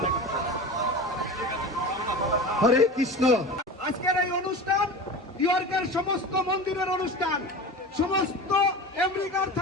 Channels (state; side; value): normal; both; correlation 0.31